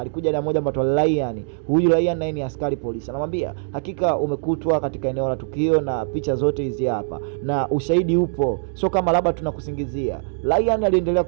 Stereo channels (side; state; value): left; silent; digital silence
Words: na mmoja mbatwa Ryan. Huyu Ryan naye ni askari polisi. Anamwambia hakika umekutwa katika eneo la tukio na picha zote hizi hapa na ushahidi upo, sio kama labda tunakusingizia. Ryan aliendelea